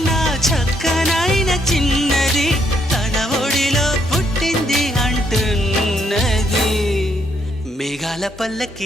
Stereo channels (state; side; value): normal; both; correlation 0.73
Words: చక్కనైన చిన్నది తన ఒడిలో పుట్టింది అంటున్నది. మేఘాల